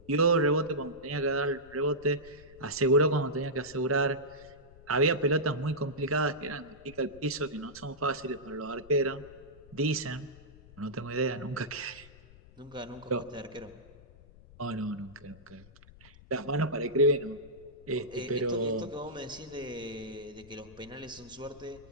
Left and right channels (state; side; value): noise; left; rumble, 22 dB below the sound